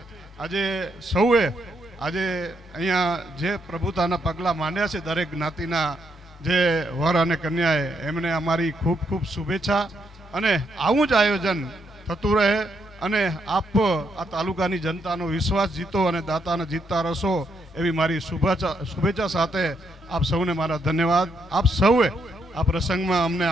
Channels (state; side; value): normal; both; correlation 0.77